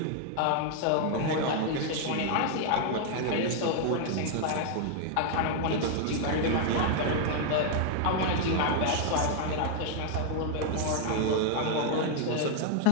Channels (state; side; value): different; both; correlation 0.00